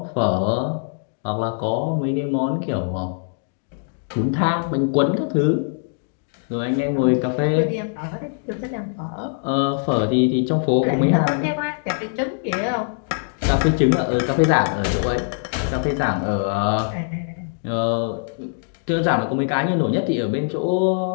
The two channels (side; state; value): right; silent; digital silence